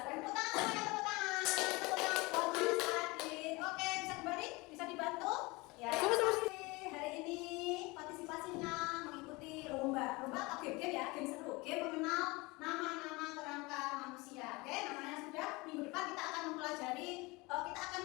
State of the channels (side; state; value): right; quieter; 24.2 dB